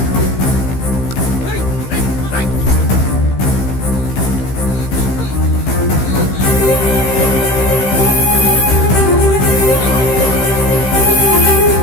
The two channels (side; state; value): right; late; 15 ms